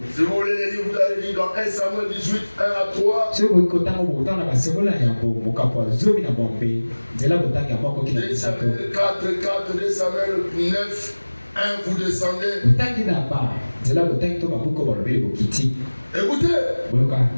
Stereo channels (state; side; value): inverted; both; correlation -1.00